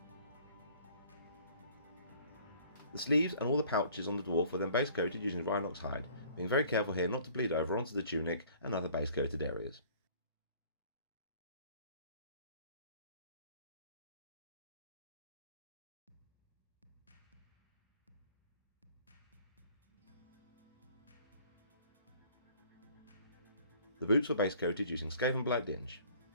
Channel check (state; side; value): inverted; both; correlation -0.53